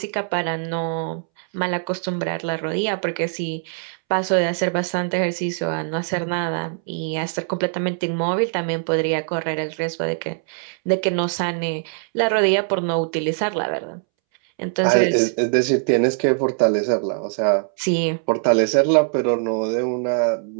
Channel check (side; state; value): left; silent; 64 dB below the other